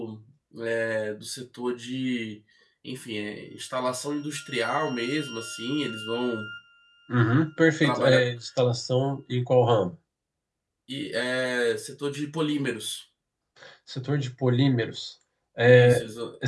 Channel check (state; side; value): identical; both; correlation 1.00